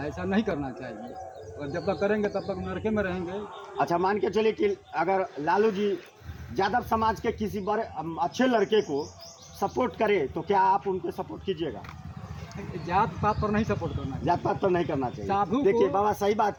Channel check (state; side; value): identical; both; correlation 1.00